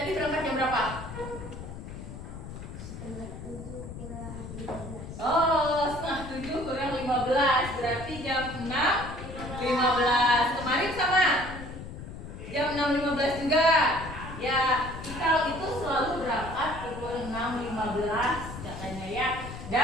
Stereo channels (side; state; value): left; noise; rumble, 10 dB below the sound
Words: berangkat jam berapa? Oh, 6:30 kurang 15. Berarti jam 6:15. Kemarin sama? Jam 6:15 juga. Ya, Ikal itu selalu berangkat pukul 6:15 katanya ya.